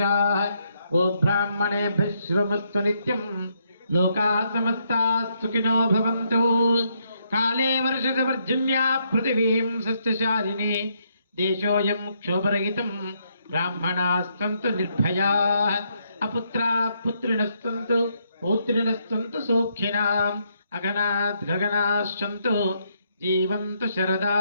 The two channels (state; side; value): inverted; both; correlation -0.75